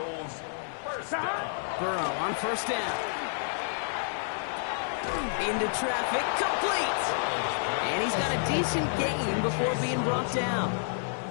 first down. Burrow on first down. Into traffic, complete. And he's got a decent gain before being brought down.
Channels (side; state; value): right; silent; 57 dB below the other